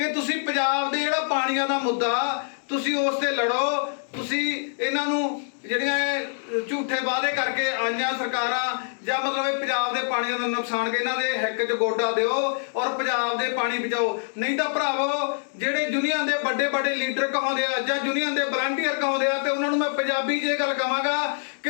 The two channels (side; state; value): right; silent; digital silence